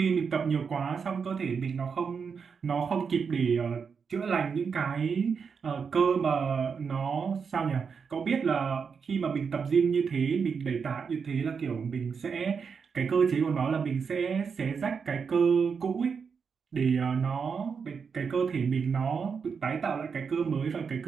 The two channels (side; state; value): left; quieter; 6.0 dB